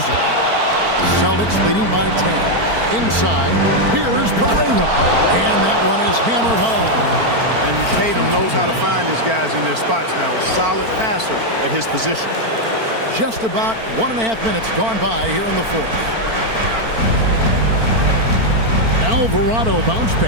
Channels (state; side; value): late; left; 4.4 ms